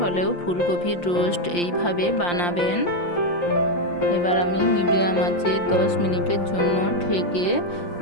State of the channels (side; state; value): right; late; 5.8 ms